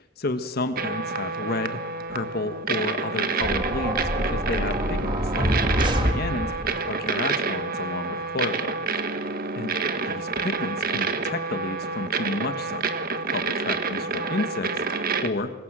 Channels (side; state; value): both; normal; correlation 0.27